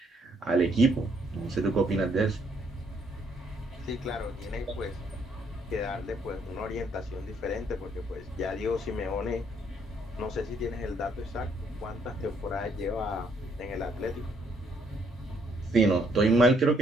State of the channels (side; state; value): both; normal; correlation 0.69